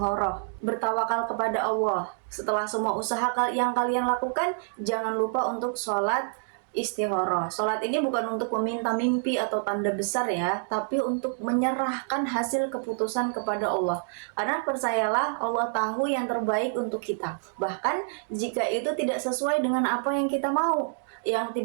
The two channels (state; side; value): silent; left; digital silence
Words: bertawakal kepada Allah. Setelah semua usaha yang kalian lakukan, jangan lupa untuk sholat istikharah. Sholat ini bukan untuk meminta mimpi atau tanda besar ya, tapi untuk menyerahkan hasil keputusan kepada Allah. Karena percayalah, Allah tahu yang terbaik untuk kita. Bahkan jika itu tidak sesuai dengan apa yang kita mau, yang